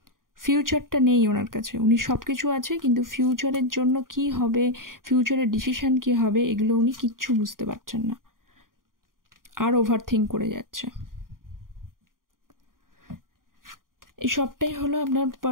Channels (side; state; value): left; late; 0.90 ms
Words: ফিউচারটা নেই ওনার কাছে, উনি সব কিছু আছে কিন্তু ফিউচারের জন্য কি হবে, ফিউচারের ডিসিশন কি হবে, এগুলো উনি কিচ্ছু বুঝতে পারছেন না, আর ওভার থিঙ্ক করে যাচ্ছে। এই সবটাই হলো আপনার